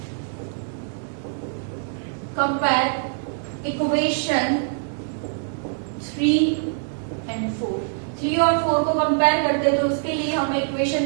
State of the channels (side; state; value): left; silent; digital silence